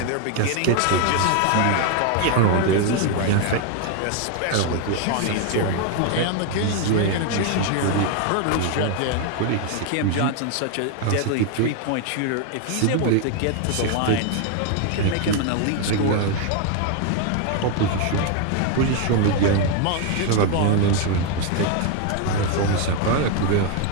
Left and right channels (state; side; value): different; both; correlation 0.01